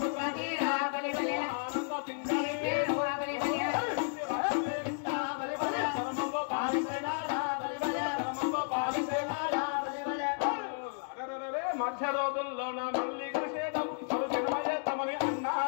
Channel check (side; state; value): right; silent; digital silence